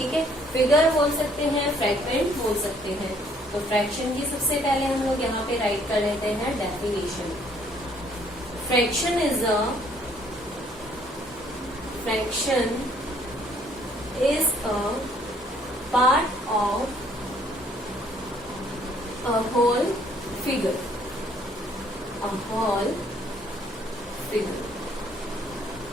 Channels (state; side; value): normal; both; correlation 0.63